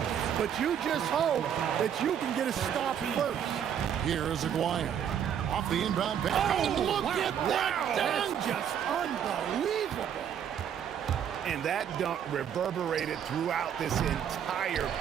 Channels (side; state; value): left; quieter; 8.9 dB